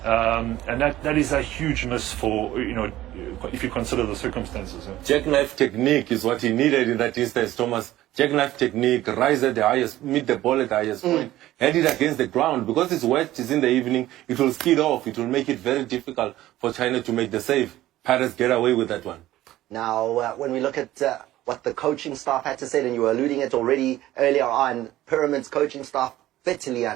And that is a huge miss for, if you consider the circumstances. Jackknife technique is what he needed in that instance, Thomas. Jackknife technique, rise at the highest, meet the ball at the highest point, head it against the ground. Because it's wet, it's in the evening, it will skid off. It will make it very difficult for China to make the save. Pirates get away with that one. Now, when we look at what the coaching staff had to say, and you were alluding it already earlier on, Pyramid's coaching staff bitterly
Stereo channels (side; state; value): left; quieter; 15.0 dB